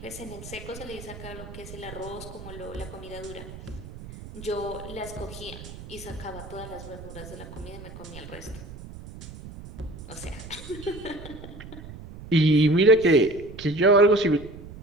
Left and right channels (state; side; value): noise; right; rumble, 14 dB below the sound